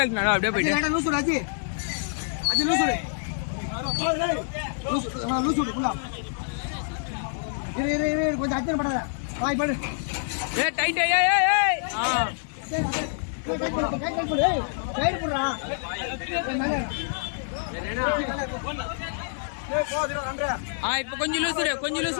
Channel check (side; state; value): right; silent; digital silence